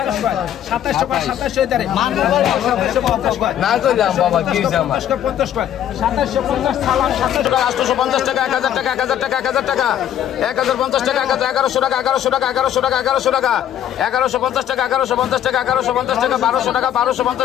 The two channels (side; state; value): right; quieter; 10.7 dB